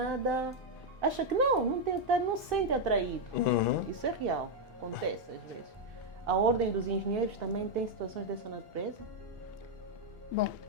acha que não se sente atraído. Isso é real, acontece às vezes. A ordem dos engenheiros também tem situações dessa natureza? Bom,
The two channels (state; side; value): normal; both; correlation 0.01